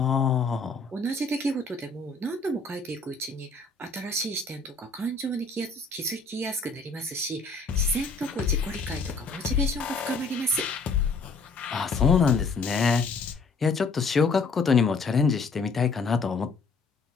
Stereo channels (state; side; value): quieter; right; 3.9 dB